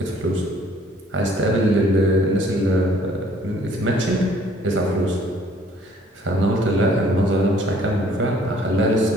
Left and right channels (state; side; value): normal; both; correlation 0.59